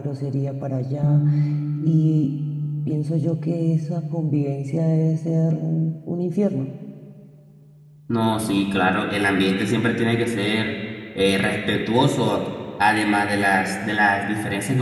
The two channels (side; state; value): both; identical; correlation 1.00